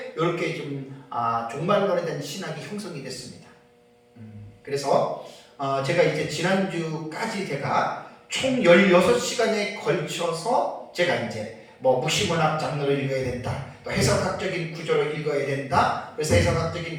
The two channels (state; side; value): identical; both; correlation 1.00